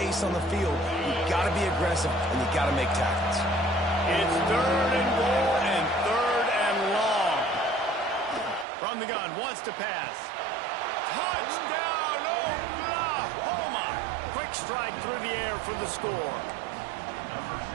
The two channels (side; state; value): left; drops out; at 8.7 s